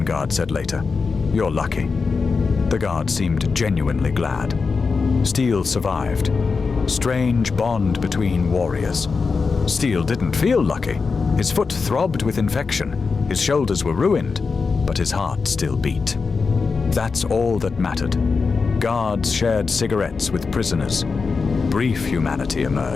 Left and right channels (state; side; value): quieter; right; 4.8 dB